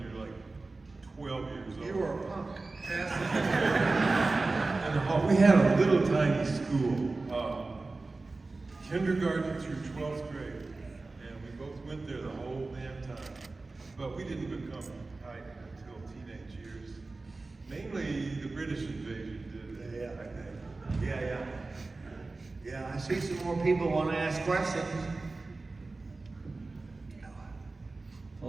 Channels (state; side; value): quieter; left; 3.5 dB